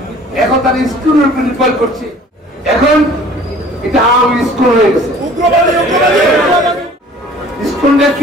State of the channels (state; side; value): normal; both; correlation 0.50